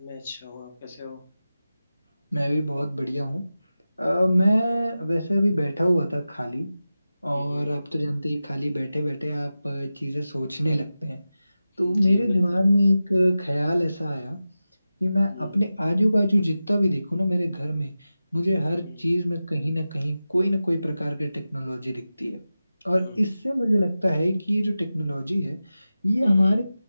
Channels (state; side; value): inverted; both; correlation -0.94